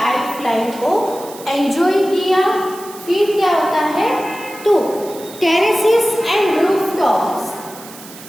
फ्लाइंग को एंजॉय किया। फिर क्या होता है, तो terraces and rooftops,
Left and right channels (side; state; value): right; noise; hiss, 17 dB below the sound